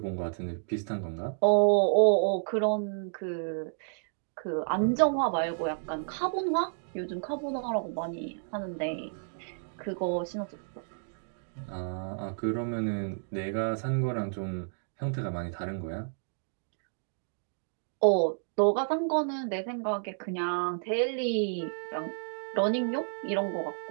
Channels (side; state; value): left; silent; digital silence